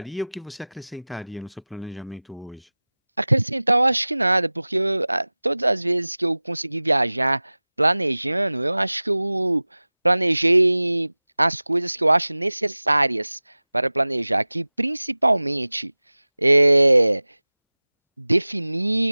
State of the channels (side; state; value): both; inverted; correlation -0.99